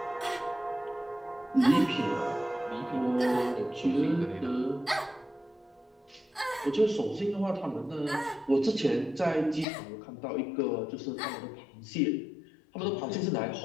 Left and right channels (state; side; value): drops out; right; at 9.7 s